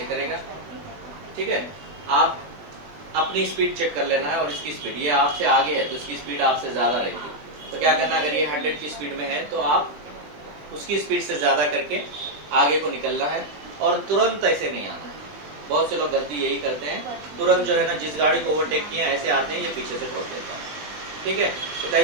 करेगा। ठीक है, आप अपनी स्पीड चेक कर लेना है और इसकी स्पीड, ये आपसे आगे है तो इसकी स्पीड आपसे ज्यादा रहेगी। तो क्या करना है, अगर ये 100 की स्पीड में है तो आप उसकी स्पीड से ज्यादा करके आगे को निकलना है और तुरंत ऐसे नहीं आना है। बहुत से लोग गलती यही करते हैं, तुरंत जो है ना, जिस गाड़ी को ओवरटेक किया ऐसे आते हैं, ये पीछे से ठोक देता है। ठीक है, तो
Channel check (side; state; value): left; late; 20 ms